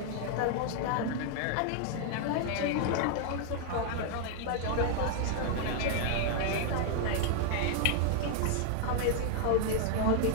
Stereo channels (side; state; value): both; different; correlation 0.00